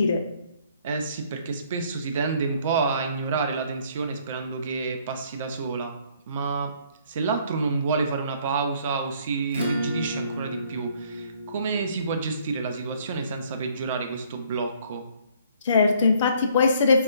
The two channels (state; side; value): inverted; both; correlation -0.62